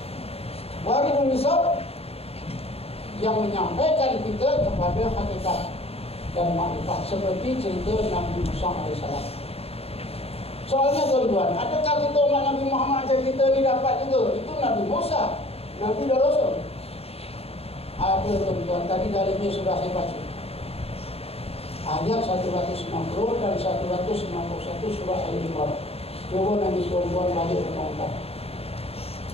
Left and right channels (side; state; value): right; late; 0.29 ms